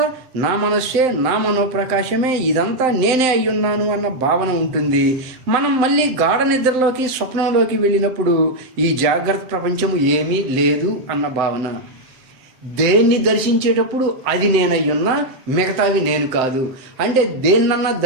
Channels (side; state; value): left; late; 7.7 ms